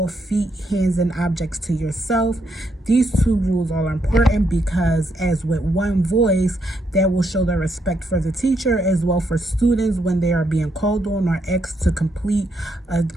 feet, hands, and objects to yourself. These two rules are important because, as with one voice, that will show the respect for the teacher as well for students when they are being called on or asked to complete a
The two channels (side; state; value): both; normal; correlation 0.77